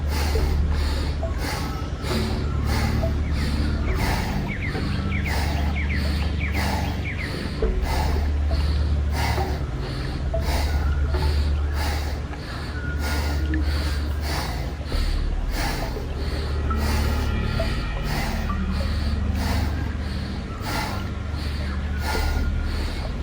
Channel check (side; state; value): both; identical; correlation 1.00